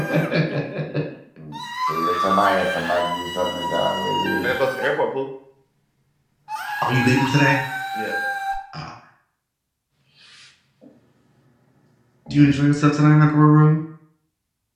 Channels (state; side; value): identical; both; correlation 1.00